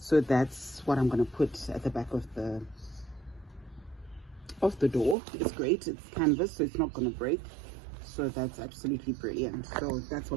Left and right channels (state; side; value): drops out; left; at 5.2 s